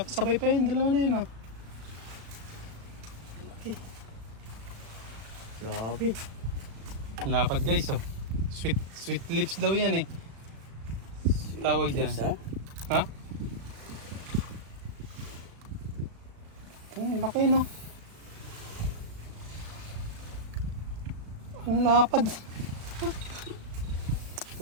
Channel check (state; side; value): late; left; 36 ms